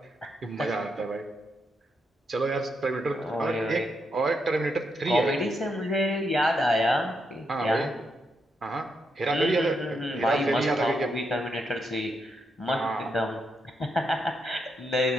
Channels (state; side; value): normal; both; correlation 0.81